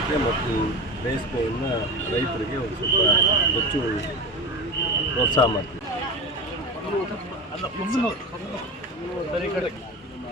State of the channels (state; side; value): normal; both; correlation 0.27